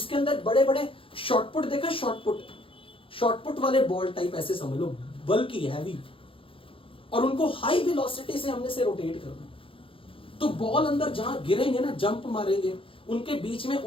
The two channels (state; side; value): late; right; 0.26 ms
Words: अंदर बड़े बड़े शॉर्टपुट देखा, शॉर्टपुट वाले बॉल टाइप ऐसे समझ लो, बल्कि हैवी, और उनको हाई वेलोसिटी से हमने से रोटेट करना। तो बॉल अंदर जहां गिरेंगे ना, जंप मारेंगे, उनके बीच में